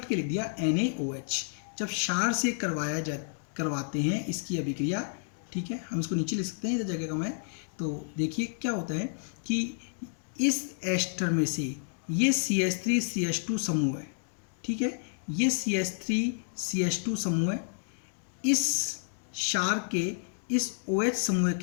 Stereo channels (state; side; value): silent; right; digital silence